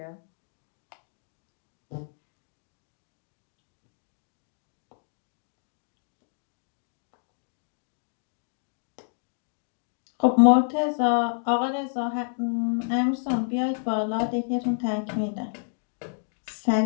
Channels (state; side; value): silent; right; digital silence